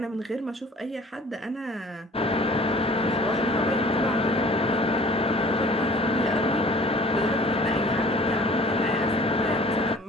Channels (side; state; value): both; normal; correlation 0.50